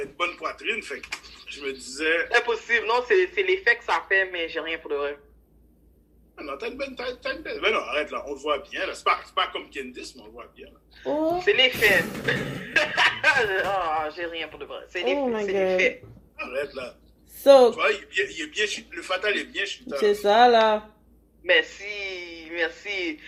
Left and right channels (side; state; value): both; identical; correlation 1.00